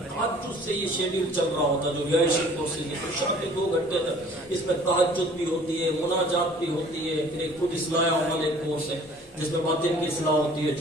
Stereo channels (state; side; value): normal; both; correlation 0.51